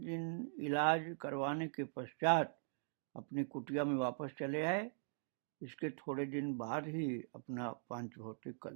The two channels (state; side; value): silent; left; digital silence